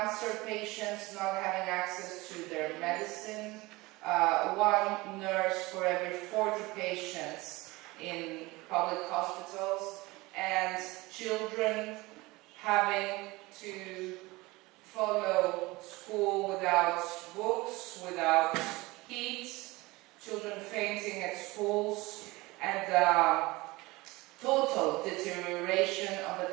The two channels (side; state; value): left; quieter; 21.8 dB